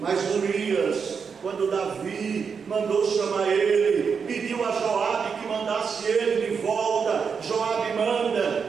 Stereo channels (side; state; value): left; quieter; 6.0 dB